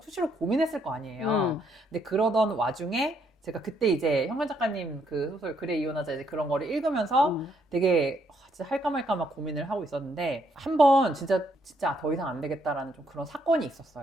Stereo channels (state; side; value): normal; both; correlation 0.72